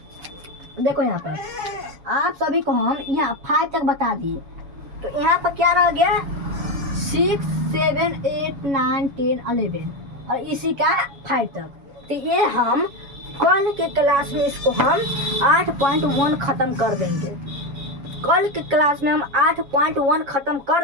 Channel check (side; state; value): left; late; 7.2 ms